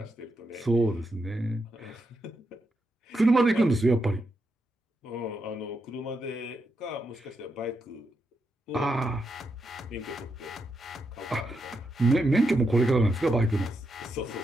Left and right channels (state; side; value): normal; both; correlation 0.83